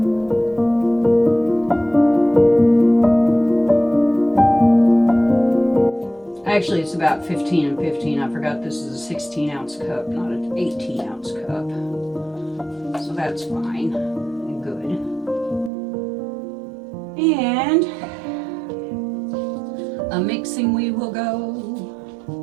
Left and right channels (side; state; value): left; drops out; at 15.7 s